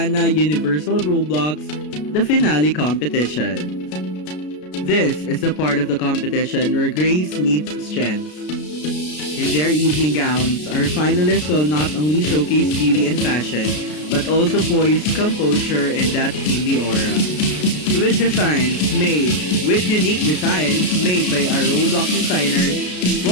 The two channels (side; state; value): right; late; 33 ms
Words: Universal Roblox, the finale competition. This is the part of the competition where grace meets strength. In their evening gowns, our finalists will not only showcase beauty and fashion, but also poise, composure, and that queenly aura. With unique designs made by our Roblox designers,